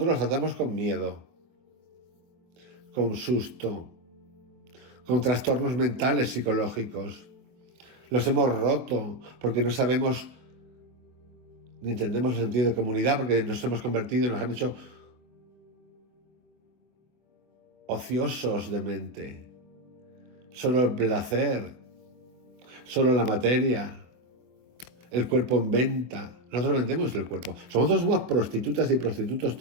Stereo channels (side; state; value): left; late; 24 ms